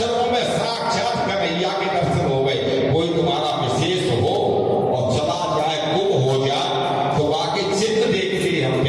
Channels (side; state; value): both; identical; correlation 1.00